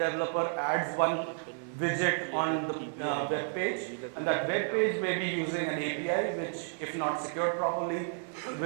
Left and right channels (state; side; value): silent; left; 57 dB below the other